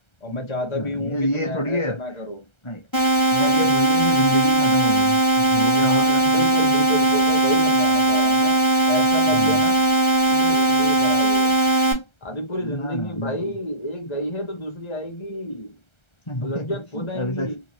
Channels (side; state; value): right; late; 1.3 ms